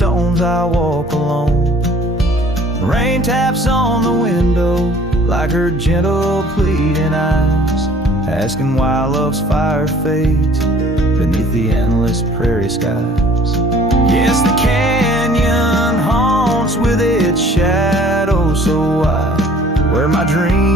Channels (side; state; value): both; normal; correlation 0.53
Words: I walk alone. Rain taps on the window like her gentle pleading eyes, asking why love's fire fades beneath the endless prairie skies. Yes, the canyon haunts with its shadow so wide, where my